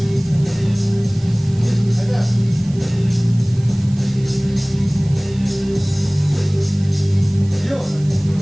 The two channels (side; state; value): right; noise; hiss, 23 dB below the sound